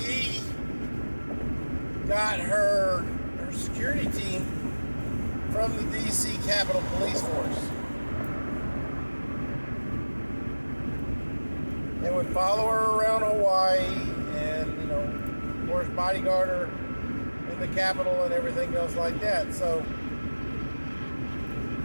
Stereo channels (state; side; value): inverted; both; correlation -1.00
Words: got her security team from the DC Capitol Police Force. They would follow her around Hawaii and, of course, bodyguard her in the Capitol and everything else like that. So